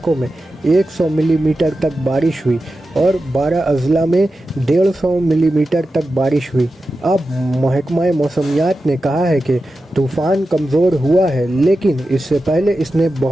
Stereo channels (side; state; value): both; normal; correlation 0.92